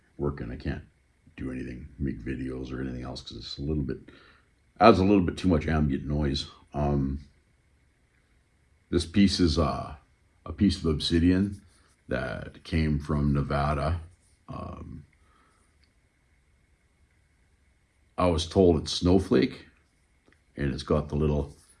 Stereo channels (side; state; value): both; identical; correlation 1.00